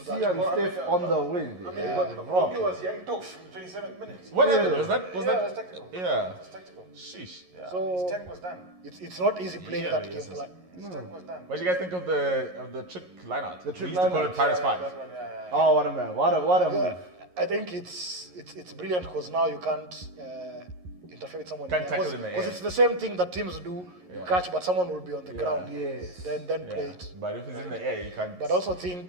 that. Sia and Steph on the wing. I mean, but Rocky was young tough in 27 minutes. What happened? Was that? It was tactical. Yeah. It was tactical. Sheesh. Yeah. So- his tank was done. It's not easy playing Yeah, that yes, game yes. plan. His tank was done. What do you guys think of the trick lineout? The trick we used to call lineout. it Pirates 5. That one, yeah. Oh, what a man! What a move! I think it's brilliant because now you can't interfere with someone. Can't tackle in the Because air. it's the same thing that teams do. You catch, but someone will be on the ground. Yes. Then play it. But if it's in the air, you can't. But I also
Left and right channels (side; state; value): left; late; 11 ms